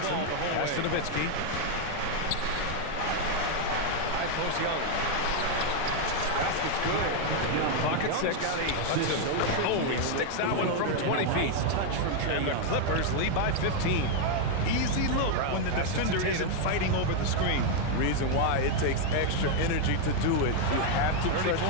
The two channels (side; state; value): both; different; correlation 0.01